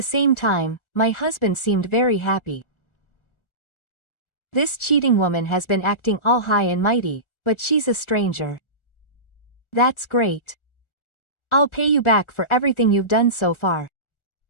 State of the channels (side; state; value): right; late; 1.4 ms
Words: same time, my husband seemed very happy. This cheating woman has been acting all high and mighty, but she's a stranger. That's great. I'll pay you back for everything you've done so far.